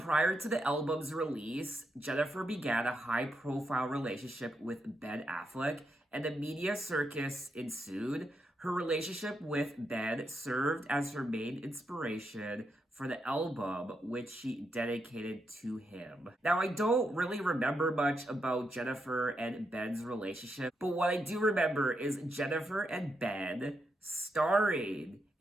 to the album's release, Jennifer began a high-profile relationship with Ben Affleck, and the media circus ensued. Her relationship with Ben served as her main inspiration for the album, which she dedicated to him. Now, I don't really remember much about Jennifer and Ben's relationship, but what I do remember is Jennifer and Ben starring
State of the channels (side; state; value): both; normal; correlation 0.83